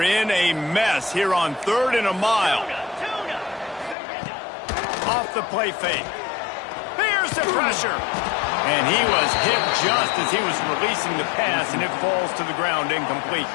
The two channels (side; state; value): right; drops out; at 4.0 s